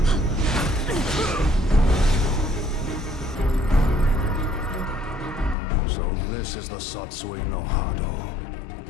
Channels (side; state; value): right; drops out; at 5.6 s